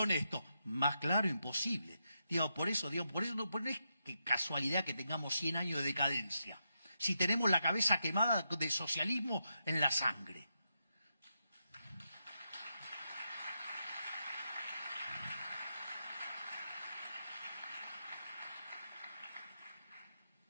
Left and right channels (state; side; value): inverted; both; correlation -0.84